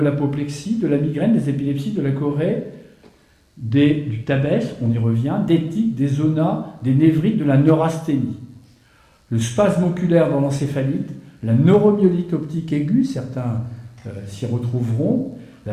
de la migraine, des épilepsies, de la chorée, du tabes, on y revient, des tics, des zonas, des névrites, de la neurasthénie. Le spasme oculaire dans l'encéphalite, la neuromyélite optique aiguë, certains s'y retrouveront,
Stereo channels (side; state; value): both; identical; correlation 1.00